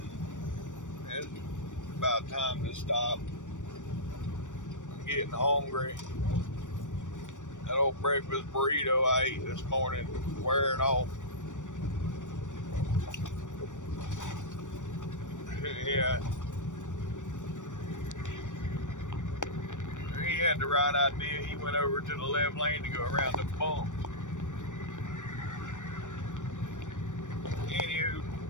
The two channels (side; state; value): right; late; 0.86 ms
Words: It's about time to stop. I'm getting hungry. That old breakfast burrito I ate this morning wearing off. Yeah. He had the right idea. He went over to the left lane to go around the bump. Anywho,